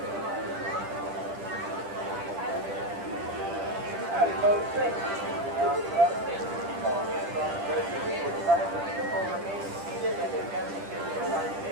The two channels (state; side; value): late; left; 10 ms